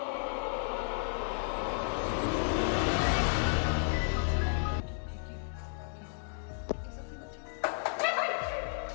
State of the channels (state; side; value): silent; right; digital silence